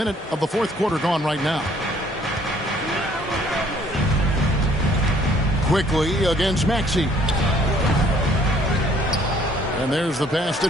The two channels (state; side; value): normal; both; correlation 0.60